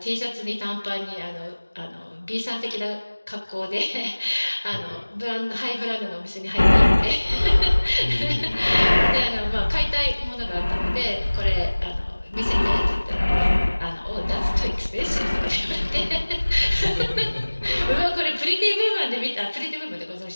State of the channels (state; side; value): inverted; both; correlation -1.00